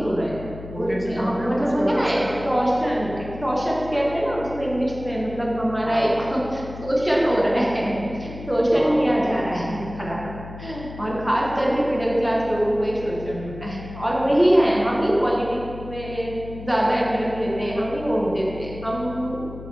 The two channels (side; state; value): left; noise; hum, 13 dB below the sound